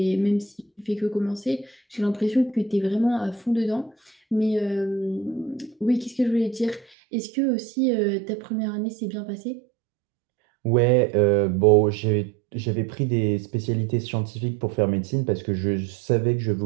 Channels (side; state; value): left; drops out; at 6.9 s